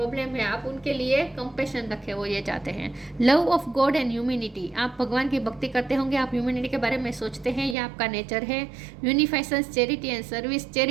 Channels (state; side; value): drops out; left; at 7.8 s